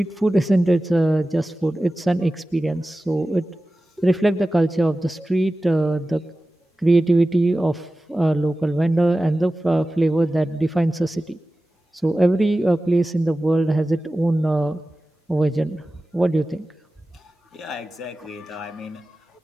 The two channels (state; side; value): normal; both; correlation 0.95